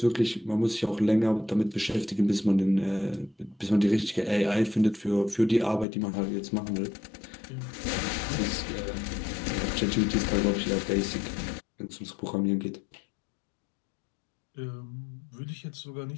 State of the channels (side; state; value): right; drops out; at 5.9 s